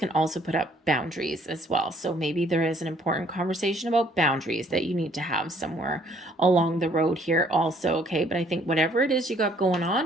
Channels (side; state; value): both; normal; correlation 0.62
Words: also put up boundaries as well. So maybe there is an important conversation about boundaries that you need to have somewhere along the road here also. Okay, but I think whatever it is you got going